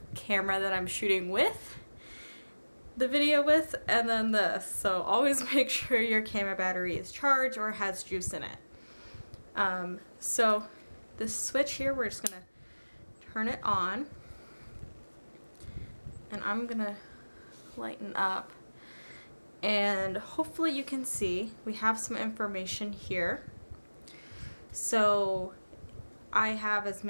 camera that I'm shooting with, the video with, and then this. So always make sure your camera battery is charged or has juice in it. So this switch here, we're just gonna turn it on, and I'm gonna lighten up, and hopefully you can see we have some information here. So I have as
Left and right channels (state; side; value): inverted; both; correlation -1.00